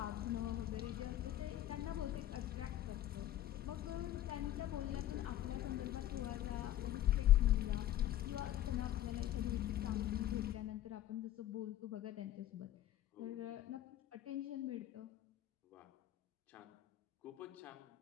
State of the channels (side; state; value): right; quieter; 12.8 dB